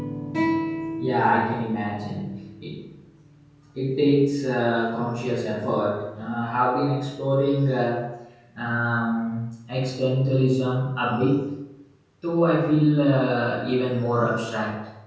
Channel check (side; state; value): both; identical; correlation 1.00